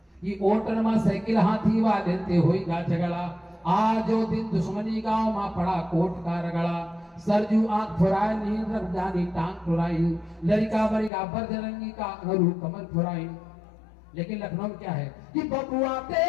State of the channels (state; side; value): drops out; right; at 11.1 s